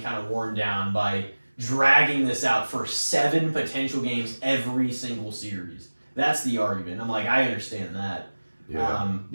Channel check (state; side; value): inverted; both; correlation -1.00